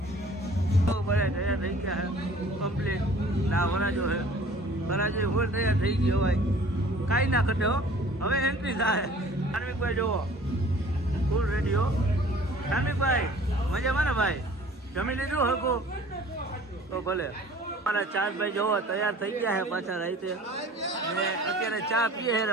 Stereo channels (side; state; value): both; normal; correlation 0.49